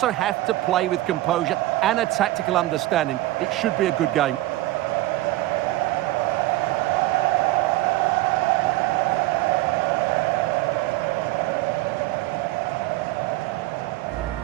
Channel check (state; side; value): quieter; left; 17.3 dB